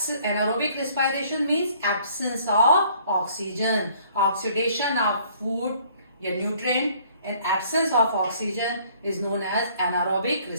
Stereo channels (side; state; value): both; inverted; correlation -0.59